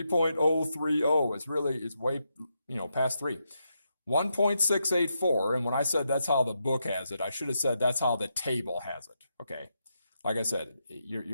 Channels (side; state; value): both; inverted; correlation -0.83